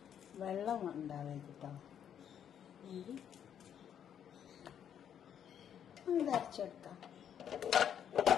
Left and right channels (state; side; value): quieter; right; 9.0 dB